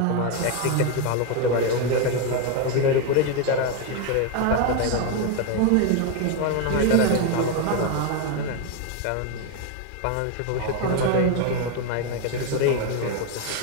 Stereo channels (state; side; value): different; both; correlation 0.01